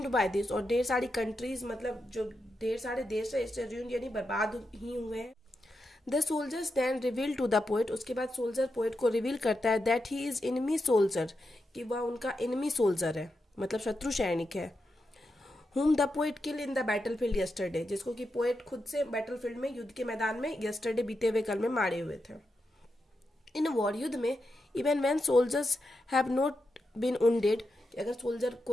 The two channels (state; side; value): normal; both; correlation 0.87